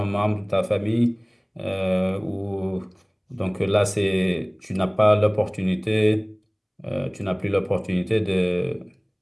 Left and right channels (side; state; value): both; identical; correlation 1.00